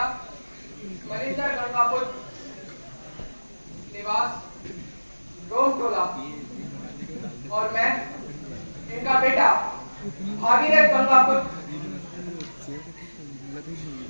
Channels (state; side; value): inverted; both; correlation -1.00